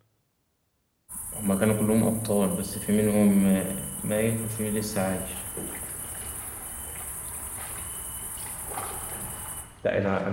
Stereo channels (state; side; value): identical; both; correlation 1.00